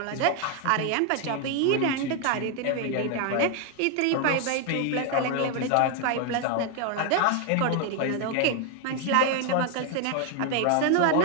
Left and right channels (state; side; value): different; both; correlation 0.01